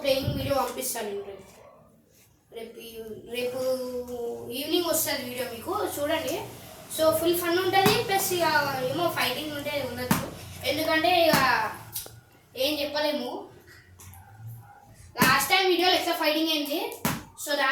ప్లేయింగ్ వీడియో పంపిస్తాను నేను. రేపు ఈవినింగ్ వస్తుంది వీడియో, మీకు చూడండి. సో ఫుల్ ఫన్ ఉంటుంది, ప్లస్ ఇక ఏమో ఫైటింగ్ ఉంటే ఉండొచ్చు, ఎందుకంటే ఇక ఏం చెప్పలేము. లాస్ట్ టైం వీడియోలో ఎక్స్ట్రా ఫైటింగ్ అయింది. సో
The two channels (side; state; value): both; identical; correlation 1.00